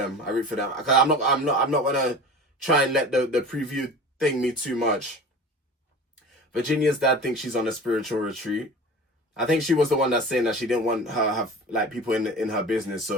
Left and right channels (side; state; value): both; normal; correlation 0.36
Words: I'm not gonna try and let the preview thing me too much. Virginia's dad thinks she's on a spiritual retreat. I think she was the one that's saying that she didn't want her have like people in her business.